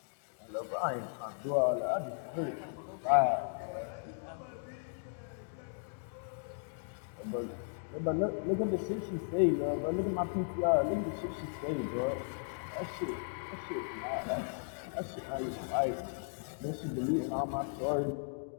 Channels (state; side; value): silent; right; digital silence